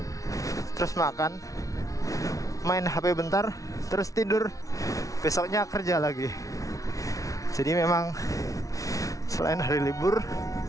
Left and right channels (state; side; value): late; right; 0.17 ms